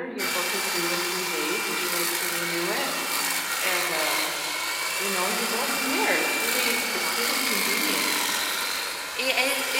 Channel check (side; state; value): both; identical; correlation 1.00